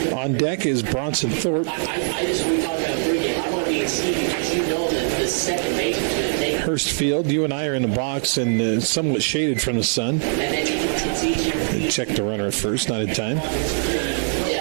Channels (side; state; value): left; silent; digital silence